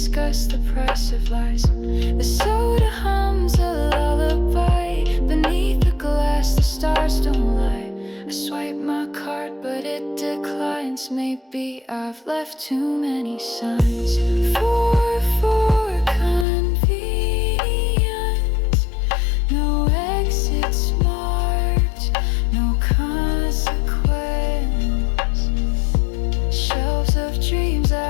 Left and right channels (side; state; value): right; drops out; at 16.4 s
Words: the price of lies. The soda hums a lullaby. Beneath the glass, the stars don't lie. I swipe my card, but it declines. Maybe I've left too many signs. For convenience, no exits marked, no consequence. Shelves of dreams